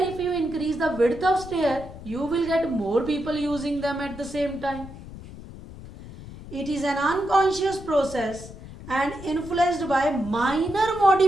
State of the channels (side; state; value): left; noise; rumble, 14 dB below the sound